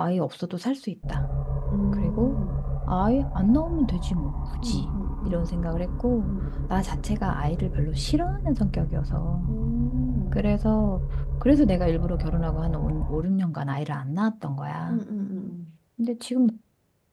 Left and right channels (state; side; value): identical; both; correlation 1.00